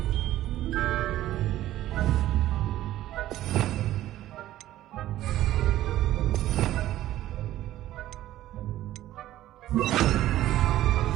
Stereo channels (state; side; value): quieter; left; 14.1 dB